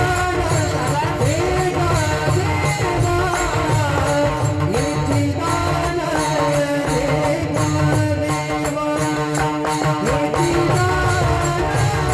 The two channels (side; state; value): both; identical; correlation 1.00